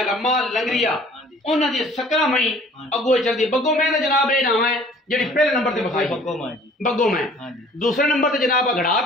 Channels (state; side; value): normal; both; correlation 0.52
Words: ਰੰਮਾ ਲੰਗਰੀਆ हाँ जी ਉਹਨਾਂ ਦੀ ਸਕਰਾ ਮਈ ਅੱਗੋਂ ਚੱਲਦੀ। ਬੱਗੋ ਮੈਂ ਦਾ ਜਨਾਬ ਇਹ ਨਾਮ ਹੈ ਜਿਹੜੀ ਪਹਿਲੇ ਨੰਬਰ ਤੇ ਵਿਖਾਈ बग्गो मां जी ਬੱਗੋ ਮੈਂ। हाँ जी ਦੂਸਰੇ ਨੰਬਰ ਤੇ ਜਨਾਬ ਅਗੜਾ